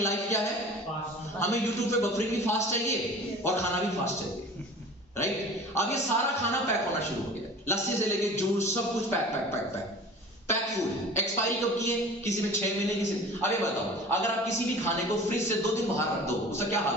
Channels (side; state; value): both; normal; correlation 0.41